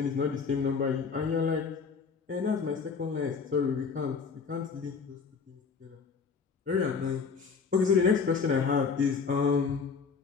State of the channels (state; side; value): quieter; right; 5.4 dB